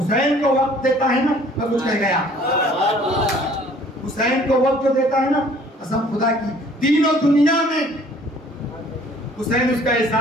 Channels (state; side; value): normal; both; correlation 0.55